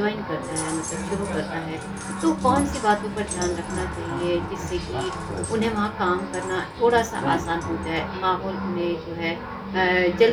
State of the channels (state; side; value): identical; both; correlation 1.00